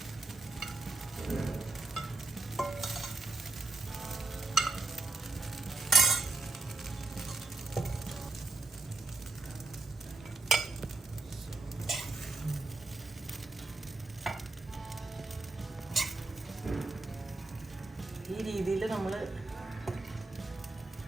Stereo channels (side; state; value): left; quieter; 3.3 dB